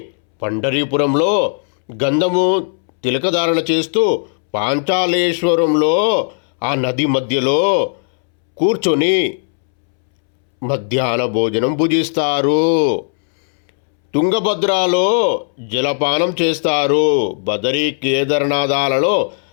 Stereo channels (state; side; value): silent; right; 69 dB below the other